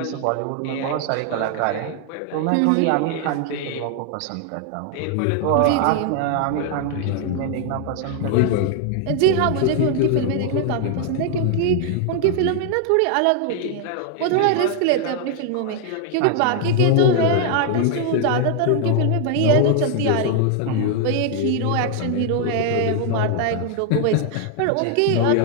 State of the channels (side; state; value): both; different; correlation 0.00